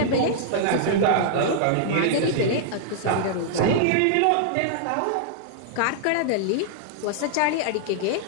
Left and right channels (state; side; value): different; both; correlation -0.01